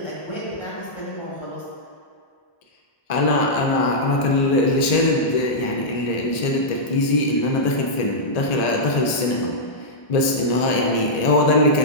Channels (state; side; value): late; right; 1.8 ms